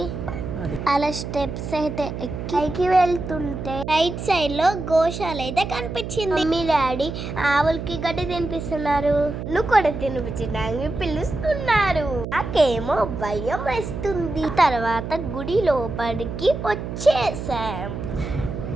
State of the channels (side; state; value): right; noise; hum, 7 dB below the sound